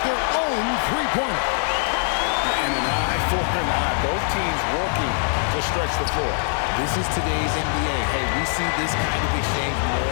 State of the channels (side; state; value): right; silent; 58 dB below the other